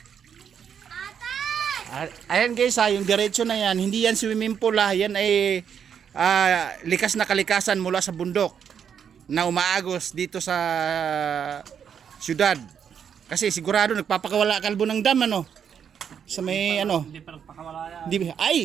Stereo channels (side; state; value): left; quieter; 7.8 dB